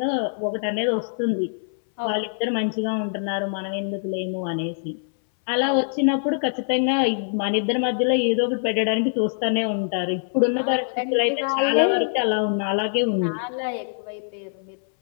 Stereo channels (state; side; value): silent; right; 60 dB below the other